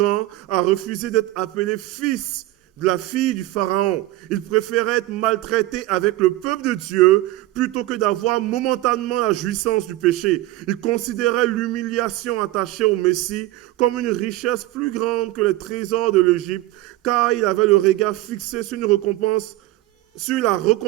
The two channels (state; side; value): quieter; left; 17.0 dB